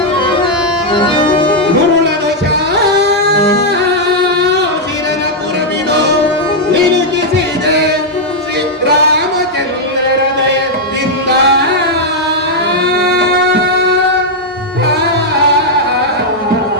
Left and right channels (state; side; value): normal; both; correlation -0.02